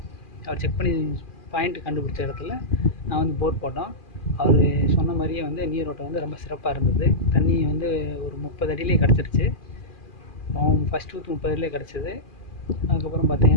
அவர் செக் பண்ணி பாயிண்ட் கண்டுபிடிச்ச இடத்துல நான் வந்து போர் போட்டோம். அவர் சொன்ன மாதிரியே வந்து நீரோட்டம் வந்து ரொம்ப சிறப்பாக இருந்தது. தண்ணி வந்து ஒரு 30 அடியிலே கிடச்சிருச்சு. ஃபஸ்ட் ஊற்று 30 அடியிலே கிடச்சிது. அதுக்கப்புறம்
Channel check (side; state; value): right; late; 2.4 ms